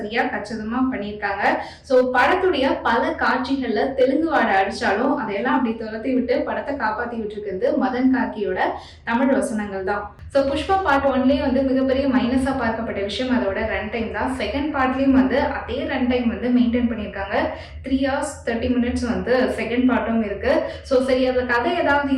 கச்சிதமா பண்ணியிருக்காங்க. சோ படத்துடைய பல காட்சிகள்ல தெலுங்கு வாடை அடிச்சாலும் அதையெல்லாம் அப்படி துரத்தி விட்டு படத்தை காப்பாத்தி விட்டுருக்கிறது மதன் கார்கியோட தமிழ் வசனங்கள் தான். சோ புஷ்பா பார்ட் 1லயே மிகப்பெரிய மைனஸா பார்க்கப்பட்ட விஷயம் அதோட ரன் டைம் தான். செகண்ட் பார்ட்லயும் அதே ரன் டைம் மெயின்டைன் பண்ணியிருக்காங்க. 3 hours 30 minutes செகண்ட் பார்ட்டும் இருக்கு. சோ சரி, அதுல கதை ஏதாவது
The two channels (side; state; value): both; identical; correlation 1.00